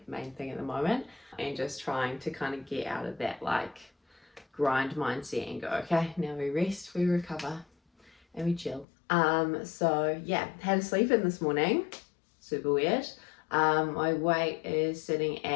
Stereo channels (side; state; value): right; drops out; at 8.8 s